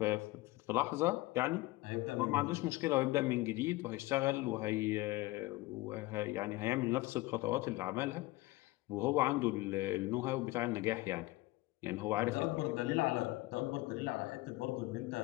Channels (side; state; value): right; quieter; 19.8 dB